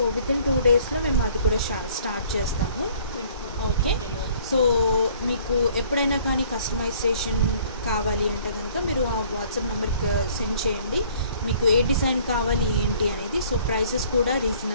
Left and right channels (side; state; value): both; inverted; correlation -0.57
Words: వితిన్ 2 డేస్లో మేము అది కూడా స్టార్ట్ చేస్తాము. ఓకే, సో మీకు ఎప్పుడైనా కానీ కస్టమైజేషన్ కావాలి అంటే కనుక మీరు ఆ వాట్సాప్ నెంబర్కి సెండ్ చేయండి. మీకు ఏ డిజైన్ కావాలి ఏంటి అనేది. సో ప్రైసెస్ కూడా